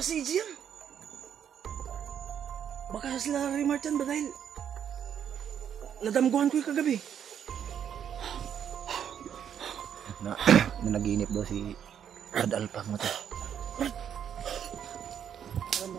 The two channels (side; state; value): left; quieter; 8.8 dB